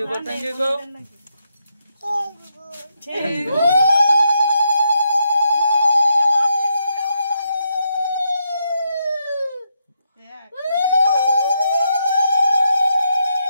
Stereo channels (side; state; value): both; inverted; correlation -0.80